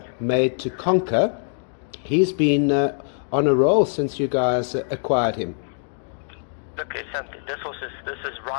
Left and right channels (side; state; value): right; silent; 60 dB below the other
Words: Made to Conquer. He's been on a roll since you guys acquired him. Look, this horse is